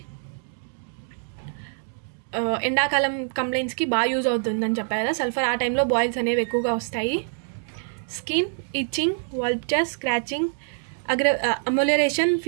ఎండాకాలం కంప్లైంట్స్కి బాగా యూజ్ అవుతుందని చెప్పారు కదా సల్ఫర్, ఆ టైంలో బాయిల్స్ అనేవి ఎక్కువగా వస్తాయి. Skin itching, vultures, scratching. Amelioration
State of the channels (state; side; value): silent; left; 62 dB below the other